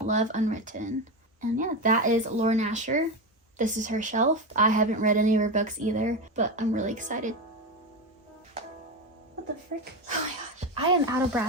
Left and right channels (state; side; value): normal; both; correlation 0.17